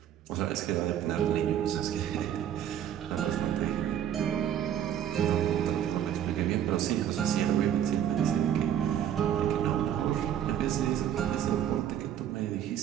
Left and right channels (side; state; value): left; quieter; 10.2 dB